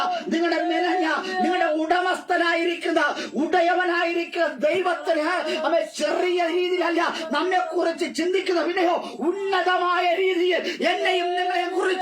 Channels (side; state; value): both; identical; correlation 1.00